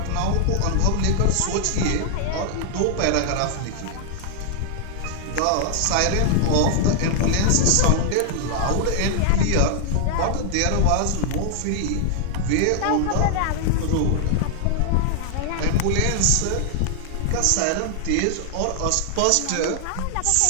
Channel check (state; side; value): different; both; correlation -0.01